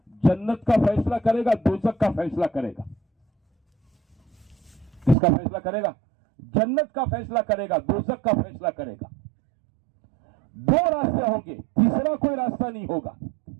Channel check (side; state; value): left; drops out; at 5.2 s